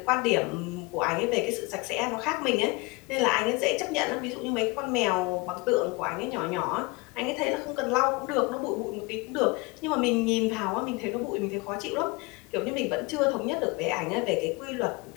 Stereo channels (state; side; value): quieter; right; 25.8 dB